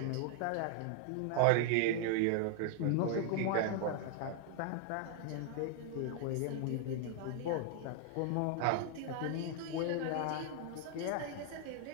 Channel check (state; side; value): different; both; correlation 0.00